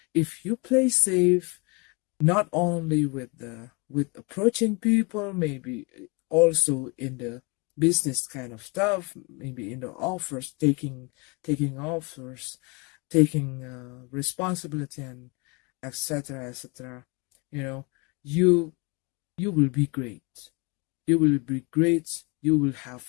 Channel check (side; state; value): right; quieter; 29.6 dB